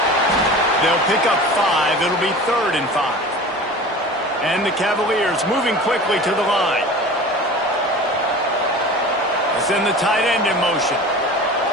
They'll pick up 5. It'll be 3rd and 5. And the Cavaliers moving quickly to the line. Send the tight end in motion.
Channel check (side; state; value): both; normal; correlation 0.37